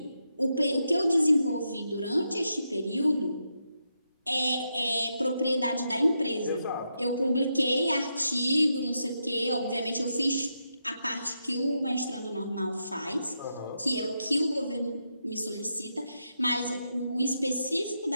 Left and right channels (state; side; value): inverted; both; correlation -0.84